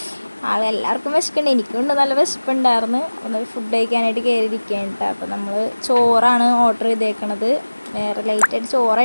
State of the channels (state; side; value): inverted; both; correlation -1.00